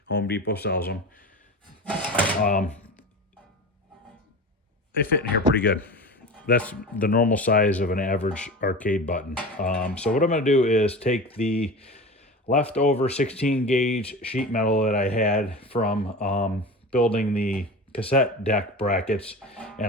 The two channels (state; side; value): normal; both; correlation 0.31